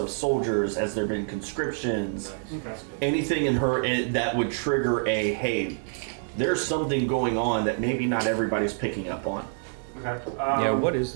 soldiers. Has there been conscriptions? Okay. Anything in her that would trigger a hey, there's something going on that maybe not everybody's picking up on. Okay. Yeah, what is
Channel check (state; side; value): silent; left; 60 dB below the other